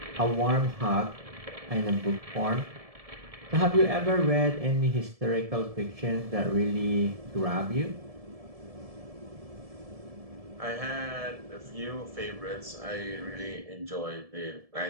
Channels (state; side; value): late; left; 1.7 ms